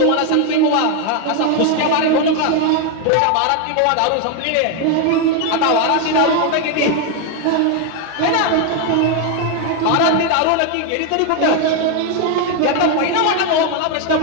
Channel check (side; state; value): both; different; correlation 0.01